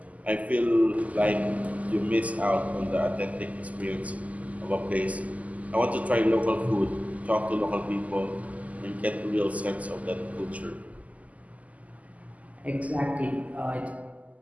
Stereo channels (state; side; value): late; left; 0.073 ms